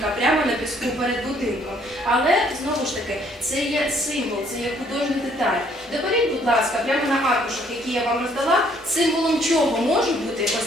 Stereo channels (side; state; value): both; normal; correlation 0.64